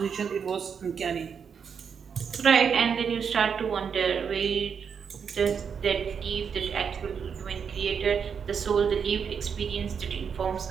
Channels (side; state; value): left; quieter; 6.7 dB